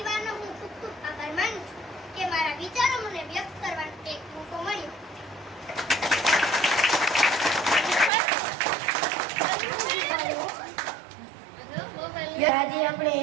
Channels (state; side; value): drops out; left; at 8.1 s